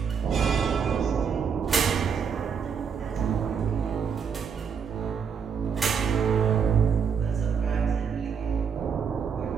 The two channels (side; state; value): left; quieter; 6.7 dB